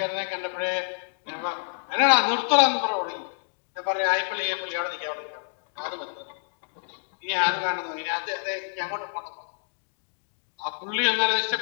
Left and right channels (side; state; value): right; silent; digital silence